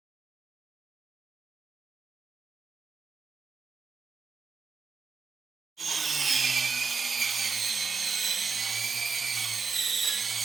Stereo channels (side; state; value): left; quieter; 4.9 dB